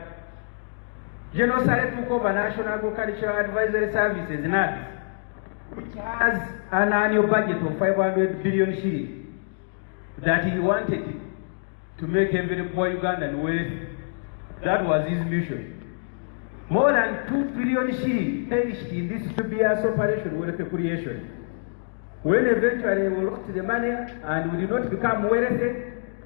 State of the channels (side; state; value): right; silent; digital silence